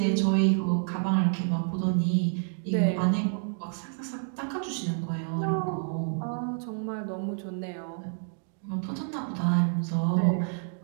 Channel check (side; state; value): left; silent; digital silence